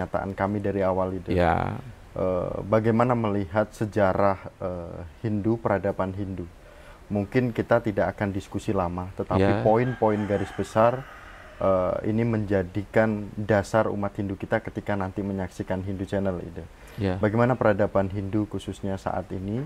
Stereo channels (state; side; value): identical; both; correlation 1.00